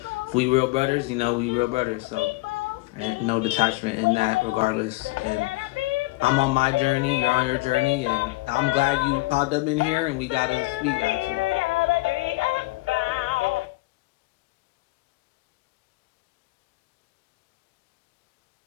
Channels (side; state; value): right; quieter; 21.9 dB